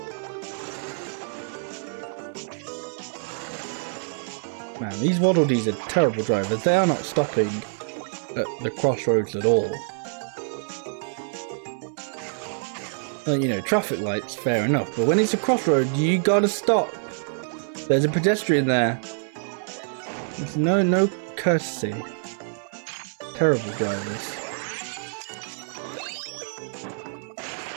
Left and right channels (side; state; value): left; silent; 59 dB below the other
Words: Man, these Waddle Dees are terrible drivers. They are not stopping at the crossroads at all. Well, you know, traffic lights, fair enough, but when it's a crossroad, you gotta stop. There's a pedestrian there. There's no courtesy. Terrible drivers.